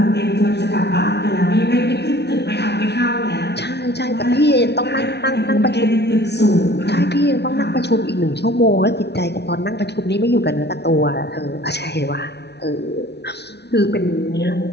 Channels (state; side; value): late; right; 0.49 ms